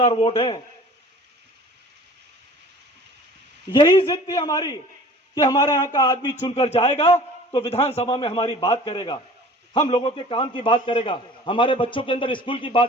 वोट हैं। यही जिद थी हमारी कि हमारे यहां का आदमी चुनकर जाएगा तो विधानसभा में हमारी बात करेगा, हम लोगों के काम की बात करेगा, हमारे बच्चों के अंदर स्कूल की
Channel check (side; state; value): both; normal; correlation 0.46